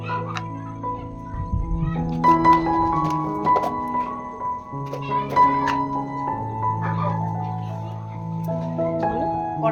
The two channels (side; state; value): both; identical; correlation 1.00